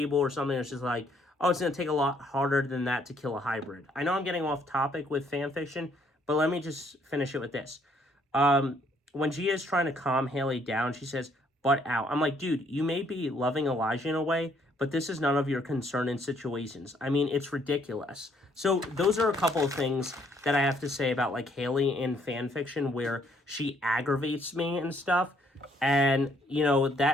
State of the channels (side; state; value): both; normal; correlation 0.67